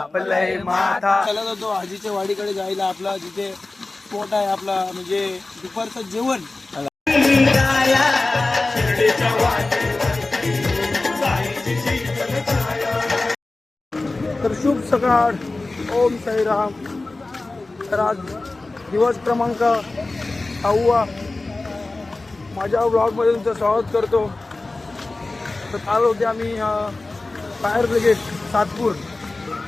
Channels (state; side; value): quieter; right; 3.2 dB